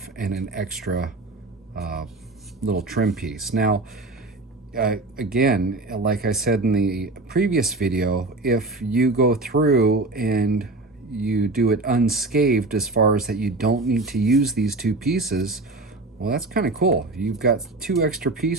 and an extra uh, little trim piece. Now, again, like I said in the previous video, if you go through and you do it unscathed as far as that you don't need to use these two pieces, well, that's kind of cool. You've got two extra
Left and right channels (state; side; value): quieter; left; 3.1 dB